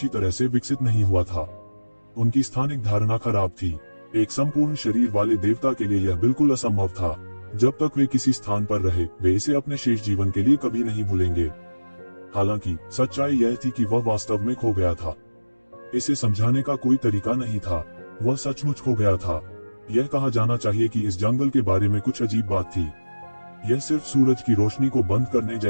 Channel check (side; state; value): both; inverted; correlation -1.00